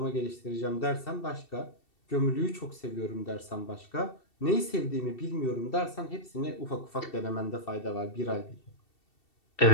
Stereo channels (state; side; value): late; right; 2.7 ms